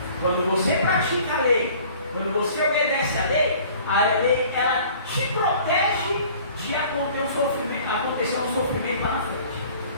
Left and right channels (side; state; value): both; inverted; correlation -0.50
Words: Quando você pratica a lei, quando você obedece a lei ela te protege de acontecer um sofrimento lá na frente.